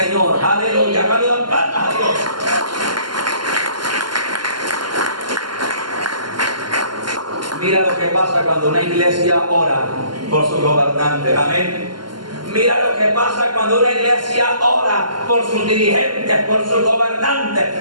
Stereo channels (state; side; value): late; left; 0.71 ms